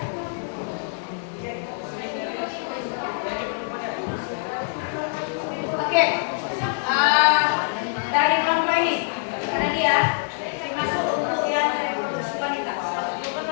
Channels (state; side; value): silent; right; digital silence